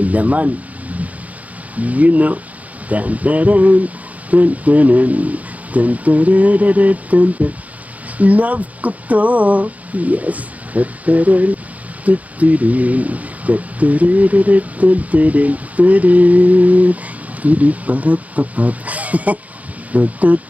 laman. You know. Dun, dun, dun, dun, dun, dun, dun, dun, dun, dun, dun, dun. Love ko to. Yes. Dun, dun, dun, dun, dun, dun, dun, dun, dun, dun, dun, dun, dun. Dun-dun-pa-ra-pa-pap.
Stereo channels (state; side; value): late; left; 0.072 ms